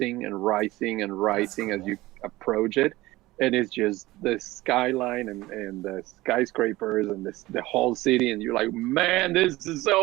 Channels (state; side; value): quieter; left; 18.6 dB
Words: and rising and rising as you approach it. And it's just the skyline and the skyscrapers and the whole city. And you're like, man, this is